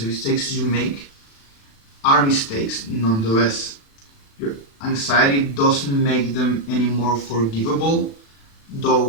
mistakes you make are mistakes nonetheless. Your anxiety doesn't make them any more forgivable,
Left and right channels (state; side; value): late; right; 36 ms